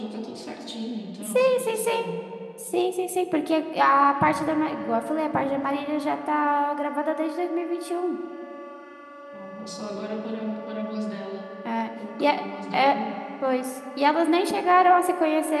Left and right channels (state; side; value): identical; both; correlation 1.00